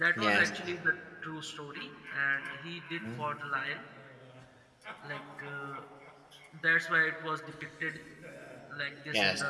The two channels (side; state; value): both; identical; correlation 1.00